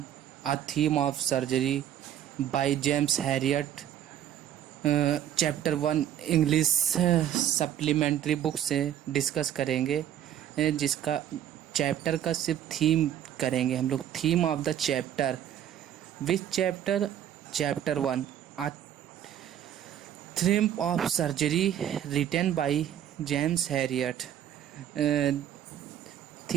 a theme of surgery by James Herriot chapter 1 English supplementary book से discuss करेंगे। जिसका चैप्टर का सिर्फ थीम करेंगे हम लोग। Theme of the chapter, which chapter? Chapter 1 a theme of surgery written by James Herriot.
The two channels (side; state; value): left; quieter; 10.6 dB